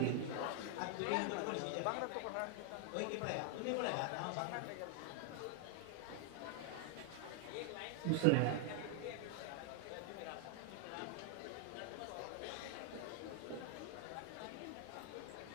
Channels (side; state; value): both; different; correlation 0.00